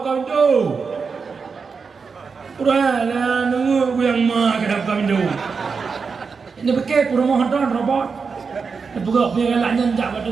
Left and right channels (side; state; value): left; quieter; 5.2 dB